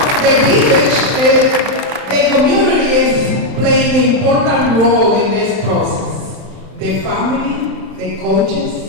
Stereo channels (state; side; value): late; left; 31 ms